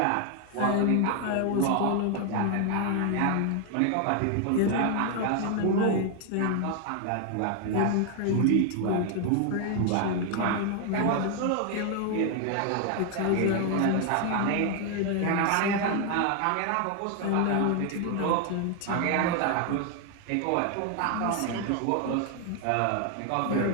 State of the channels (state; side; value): different; both; correlation 0.00